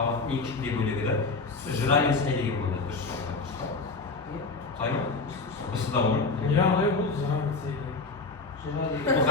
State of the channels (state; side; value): quieter; right; 4.0 dB